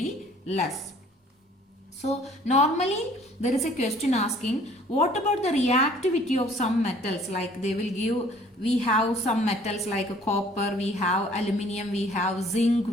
less. So normally there is a question asking, what about the reactivity of some metals? Like they will give, we have some metals like copper, we have aluminium, we have zinc,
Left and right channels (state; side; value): normal; both; correlation 0.56